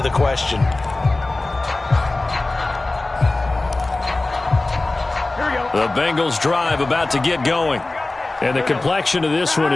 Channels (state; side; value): quieter; right; 3.0 dB